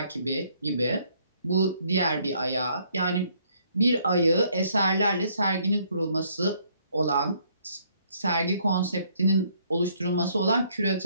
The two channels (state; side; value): inverted; both; correlation -0.67